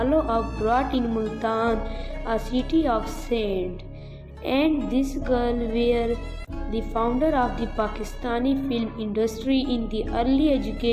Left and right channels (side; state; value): both; identical; correlation 1.00